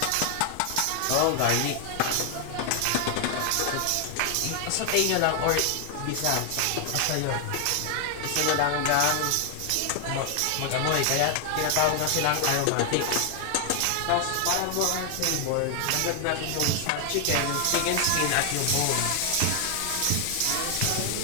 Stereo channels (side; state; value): both; different; correlation 0.00